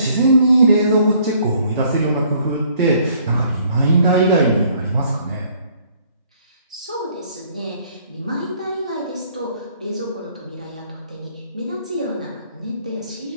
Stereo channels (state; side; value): inverted; both; correlation -0.62